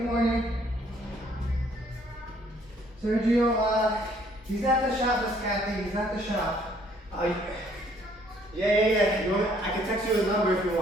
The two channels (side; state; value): both; normal; correlation 0.63